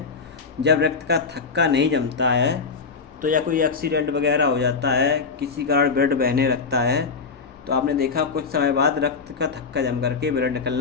जब रक्त का थक्का नहीं जमता है, तो या कोई एक्सीडेंट वगैरह हो जाता है, किसी कारण ब्लड बहने लगता है, तो आपने देखा कुछ समय बाद रक्त का थक्का जम करके ब्लड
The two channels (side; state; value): right; quieter; 5.0 dB